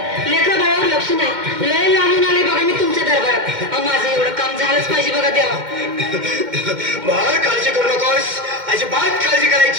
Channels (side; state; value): left; late; 2.1 ms